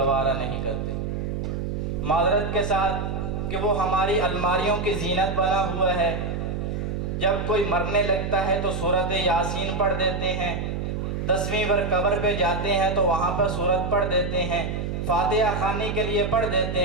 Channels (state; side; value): noise; right; hum, 3 dB below the sound